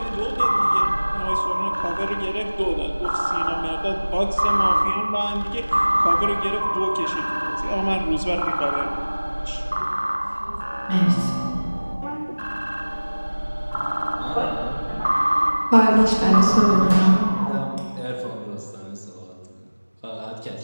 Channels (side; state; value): both; inverted; correlation -1.00